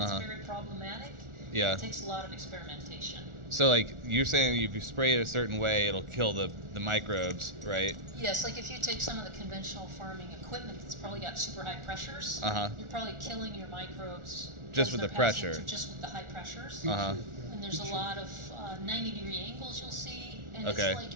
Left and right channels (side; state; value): left; late; 1.4 ms